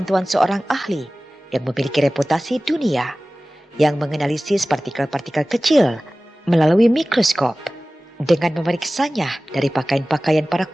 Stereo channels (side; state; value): both; normal; correlation 0.98